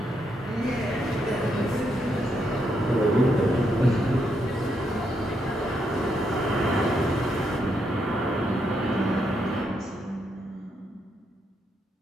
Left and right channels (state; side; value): normal; both; correlation 0.79